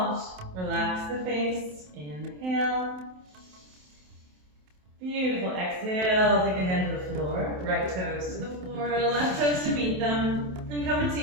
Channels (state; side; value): late; left; 27 ms